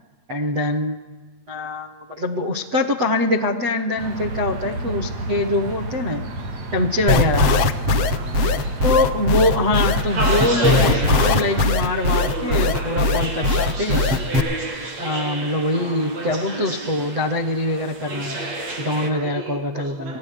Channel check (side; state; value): left; late; 8.4 ms